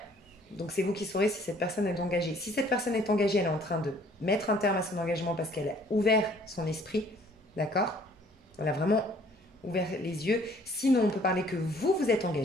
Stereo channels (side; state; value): both; normal; correlation 0.58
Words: Donc c'est vous qui saurez si cette personne est engagée. Si cette personne est engagée, elle est en train de mettre un terme à son engagement parce qu'elle a ouvert son esprit, d'accord? Elle a vraiment ouvert les yeux. Sinon, on peut parler que vous, vous êtes